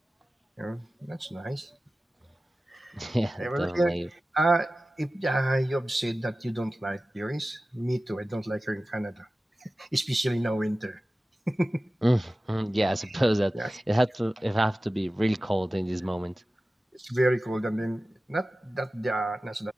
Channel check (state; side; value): normal; both; correlation 0.96